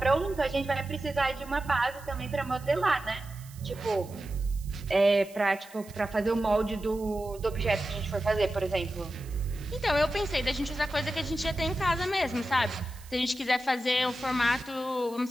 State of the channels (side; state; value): right; noise; hiss, 21 dB below the sound